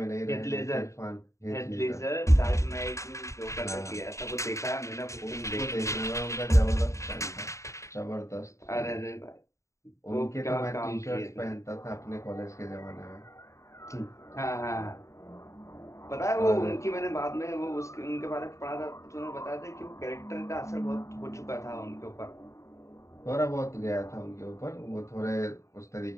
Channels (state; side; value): late; right; 0.14 ms